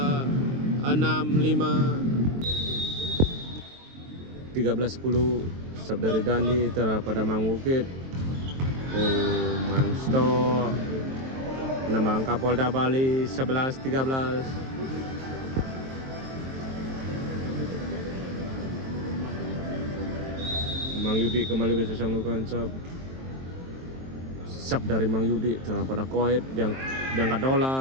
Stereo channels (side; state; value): left; late; 23 ms